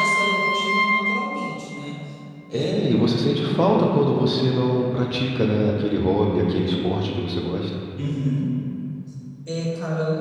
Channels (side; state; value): both; identical; correlation 1.00